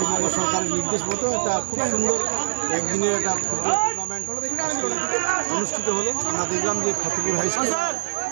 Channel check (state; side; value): silent; left; digital silence